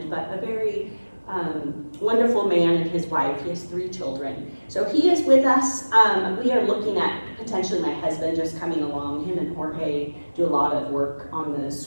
but a very wonderful man and his wife. He has 3 children. So he is with us. We are looking at potentially my husband just coming along. Him and Jorge do a lot of work on the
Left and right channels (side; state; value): both; inverted; correlation -1.00